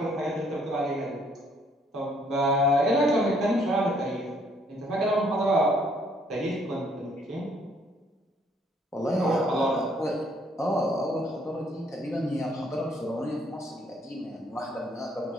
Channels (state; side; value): normal; both; correlation 0.65